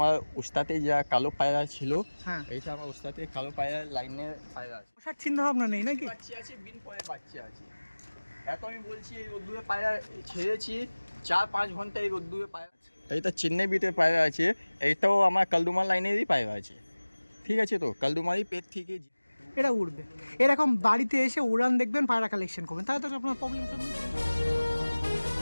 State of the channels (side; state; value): both; inverted; correlation -1.00